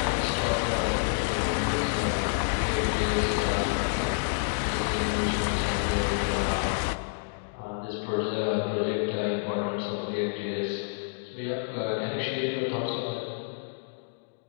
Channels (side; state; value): right; silent; digital silence